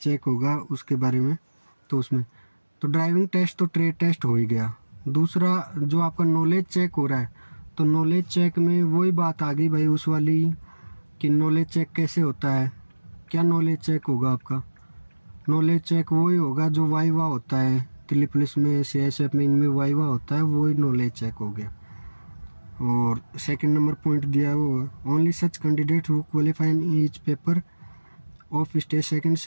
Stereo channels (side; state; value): both; inverted; correlation -1.00